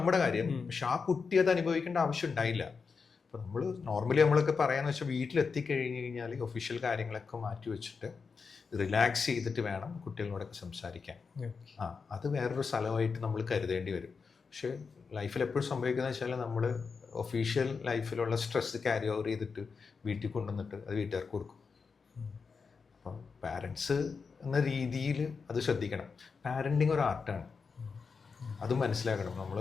കാര്യം, പക്ഷെ ആ കുട്ടി അത് അനുഭവിക്കേണ്ട ആവശ്യം ഉണ്ടായില്ല. അപ്പോൾ നമ്മൾ നോർമലി നമ്മളൊക്കെ പറയാന്ന് വെച്ചാൽ വീട്ടിലെത്തിക്കഴിഞ്ഞ് കഴിഞ്ഞാൽ ഒഫീഷ്യൽ കാര്യങ്ങളൊക്കെ മാറ്റി വെച്ചിട്ട് റിലാക്സ് ചെയ്തിട്ട് വേണം കുട്ടികളോടൊക്കെ സംസാരിക്കാൻ. അത് വേറൊരു സ്ഥലമായിട്ട് നമ്മൾ കരുതേണ്ടി വരും. പക്ഷേ ലൈഫിൽ എപ്പോഴും സംഭവിക്കുന്നത് വെച്ചാൽ നമ്മൾ ഒഫീഷ്യൽ ലൈഫിലുള്ള സ്ട്രെസ് ക്യാരി ഓവർ ചെയ്തിട്ട് വീട്ടിൽ കൊണ്ടുവന്നിട്ട് അത് വീട്ടുകാർക്ക് കൊടുക്കും. അപ്പം പാരൻസ് എന്ന രീതിയിൽ അത് ശ്രദ്ധിക്കണം. പാരൻറ്റിങ് ഒരു ആർട്ടാണ്, അത് മനസ്സിലാക്കണം. നമ്മൾ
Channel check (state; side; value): quieter; right; 5.2 dB